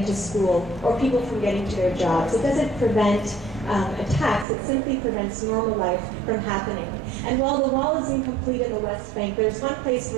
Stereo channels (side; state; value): left; drops out; at 4.5 s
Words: to school or people from getting to their jobs. It doesn't prevent attacks, it simply prevents normal life from happening. And while the wall is incomplete in the West Bank, there's one place